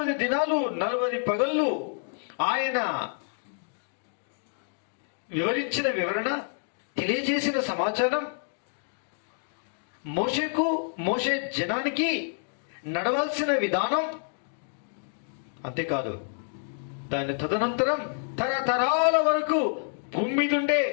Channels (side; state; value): right; silent; digital silence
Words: దినాలు 40 పగళ్ళు ఆయన వివరించిన వివరణ, తెలియజేసిన సమాచారం మోషే జనానికి నడవాల్సిన విధానం. అంతేకాదు, దాని తదనంతరం తరతరాల వరకు భూమి మీద ఉండే